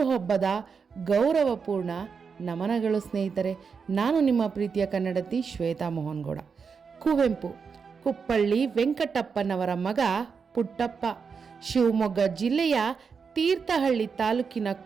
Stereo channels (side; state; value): left; quieter; 5.7 dB